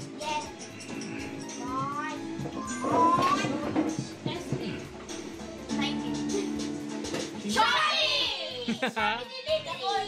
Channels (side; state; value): both; identical; correlation 1.00